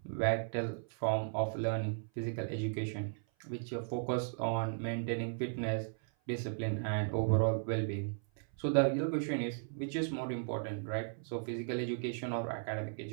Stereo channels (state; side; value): silent; left; 54 dB below the other